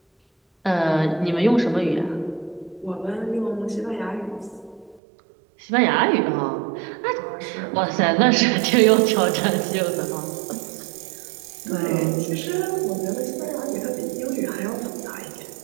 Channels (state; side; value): drops out; left; at 5.0 s